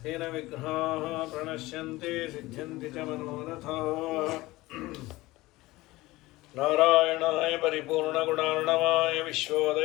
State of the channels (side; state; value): right; quieter; 19.4 dB